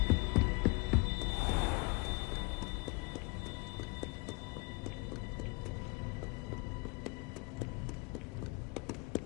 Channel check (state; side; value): quieter; right; 28.1 dB